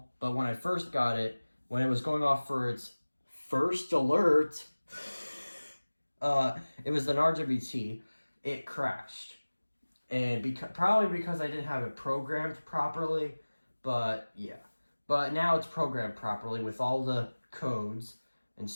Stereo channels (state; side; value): inverted; both; correlation -1.00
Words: But when I first got it, when it was going off for its first alert, it was an RWT, it crashed. And probably because I didn't have it programmed properly, but yeah. But now it's programmed properly with all the codes and